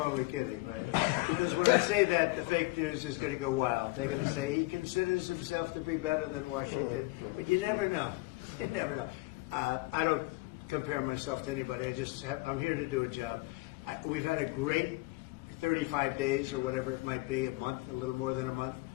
kidding, right? Because when I say that, the fake news is going to go wild. They're going to say he considers himself to be better than Washington. But you never know. You never know. I don't compare myself to anybody. I'm here to do a job. We've had a great 35 days or whatever it might be, a month, a little more than a month.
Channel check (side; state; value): right; quieter; 23.4 dB